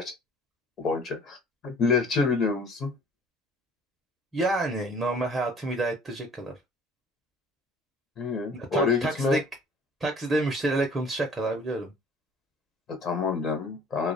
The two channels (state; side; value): normal; both; correlation 0.51